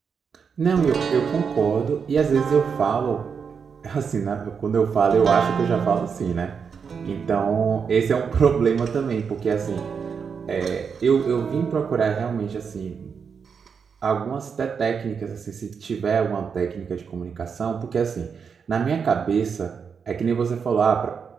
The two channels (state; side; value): quieter; left; 6.2 dB